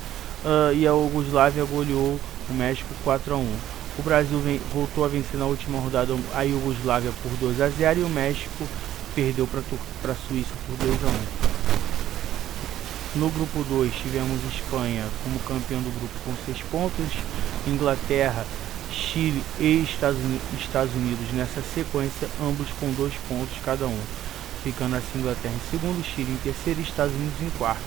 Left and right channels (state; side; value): quieter; left; 12.4 dB